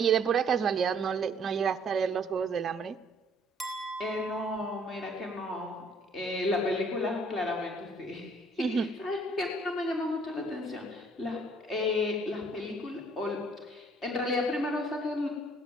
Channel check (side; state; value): both; normal; correlation 0.60